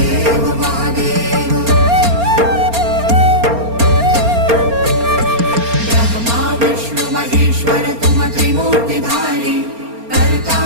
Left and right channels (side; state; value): left; late; 4.3 ms